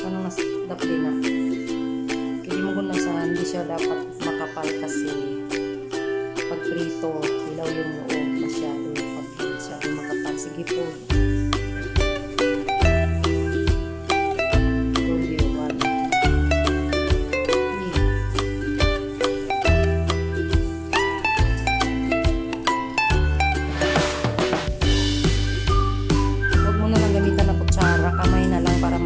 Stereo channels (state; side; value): identical; both; correlation 1.00